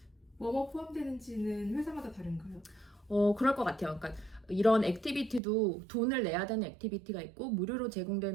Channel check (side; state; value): left; drops out; at 5.4 s